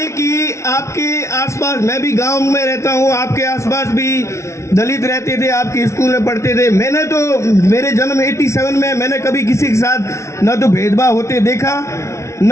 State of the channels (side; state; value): right; late; 0.14 ms